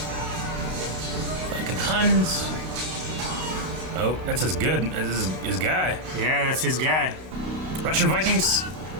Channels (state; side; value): late; left; 32 ms